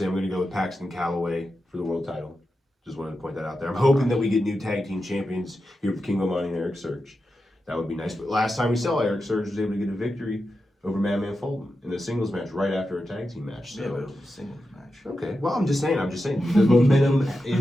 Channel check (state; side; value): normal; both; correlation 0.90